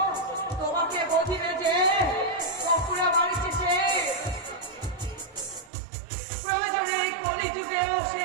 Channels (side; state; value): left; drops out; at 5.7 s